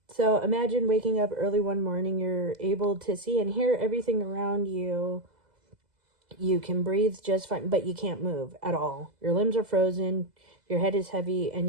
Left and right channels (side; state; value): left; late; 2.0 ms